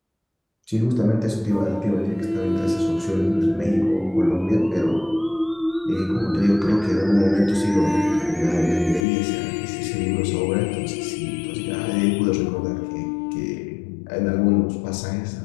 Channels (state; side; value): drops out; right; at 9.1 s